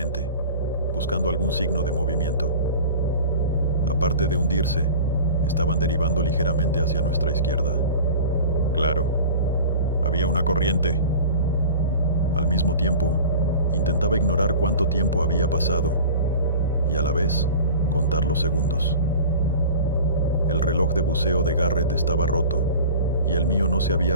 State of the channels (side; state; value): both; inverted; correlation -0.38